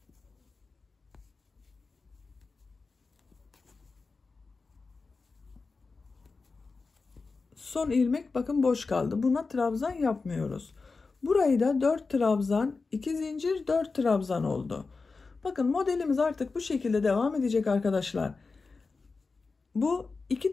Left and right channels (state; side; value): quieter; right; 4.2 dB